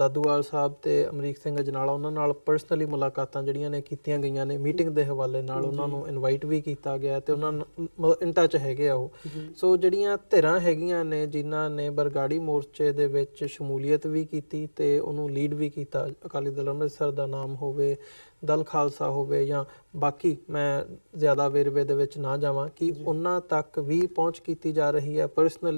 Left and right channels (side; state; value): both; inverted; correlation -1.00